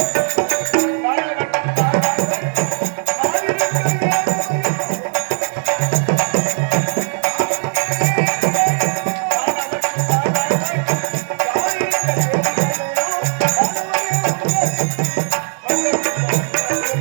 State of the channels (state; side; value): silent; left; 59 dB below the other